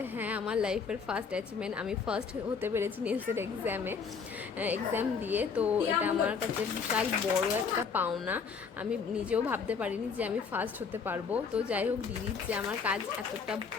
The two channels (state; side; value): quieter; right; 5.7 dB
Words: হ্যাঁ, আমার লাইফের ফার্স্ট অ্যাচিভমেন্ট, আমি ফার্স্ট হতে পেরেছি নেলসের এক্সাম দিয়ে। তো এটা আমার কাছে বিশাল বড় একটা পাওনা, আমি নিজেও ভাবতে পারিনি যে আমি ফার্স্ট হতে পারবো। তো যাই হোক, দিদির যে আমার কাজ এতটা